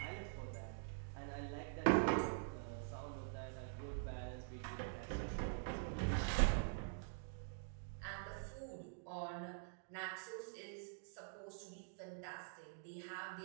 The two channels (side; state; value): left; silent; digital silence